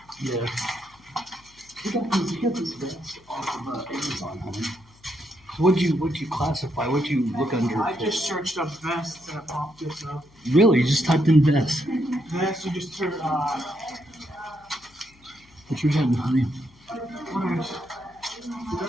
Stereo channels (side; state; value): left; noise; hum, 28 dB below the sound